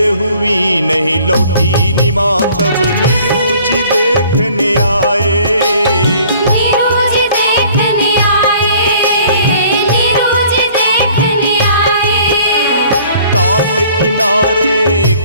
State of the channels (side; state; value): both; inverted; correlation -0.54